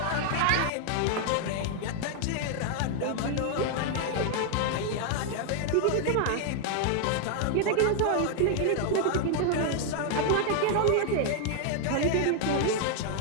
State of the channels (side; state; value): both; different; correlation 0.00